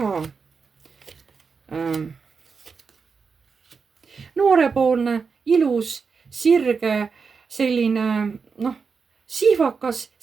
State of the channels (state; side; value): quieter; left; 5.3 dB